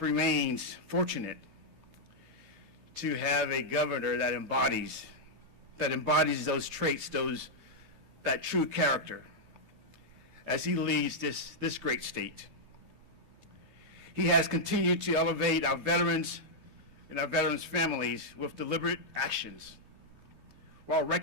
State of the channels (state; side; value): late; left; 13 ms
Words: remains fortunate to have a governor that embodies those traits, that true character, as he leads this great state. He has continued to elevate our veterans and our veterans' families with deliberate actions, while